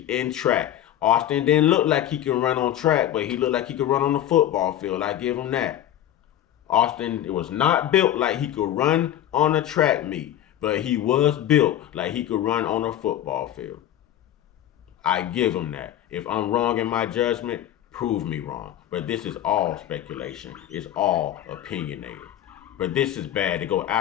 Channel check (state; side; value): quieter; right; 11.7 dB